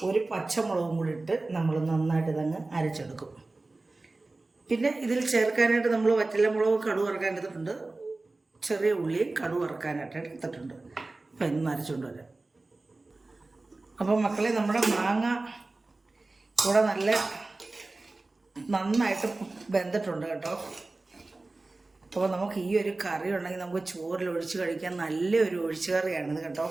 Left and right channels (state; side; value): quieter; left; 3.2 dB